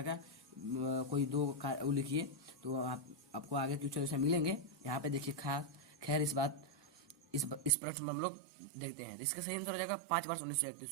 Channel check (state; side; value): drops out; left; at 7.7 s